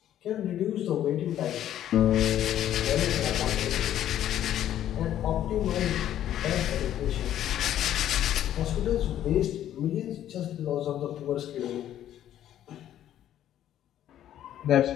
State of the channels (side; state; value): right; quieter; 11.6 dB